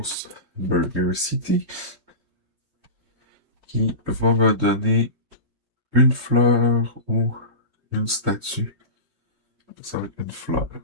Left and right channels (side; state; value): left; late; 3.1 ms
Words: Burger City. Qui va me donner une fleur ou une statue. Ça va être une fleur.